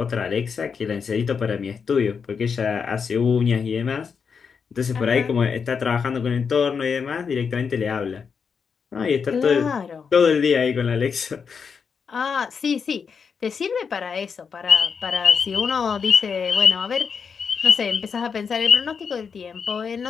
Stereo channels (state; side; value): quieter; right; 6.1 dB